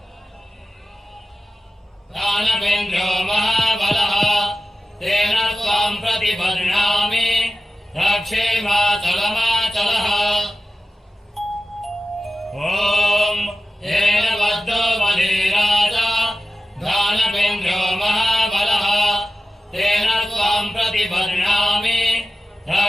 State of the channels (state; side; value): normal; both; correlation 0.94